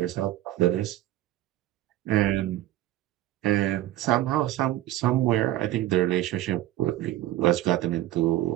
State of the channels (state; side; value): quieter; left; 14.5 dB